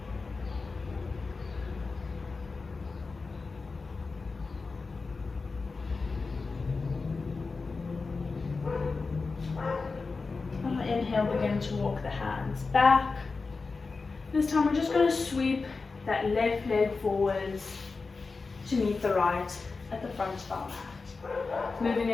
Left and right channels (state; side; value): quieter; right; 4.2 dB